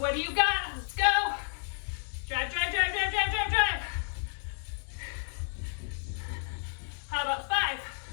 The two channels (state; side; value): silent; right; 57 dB below the other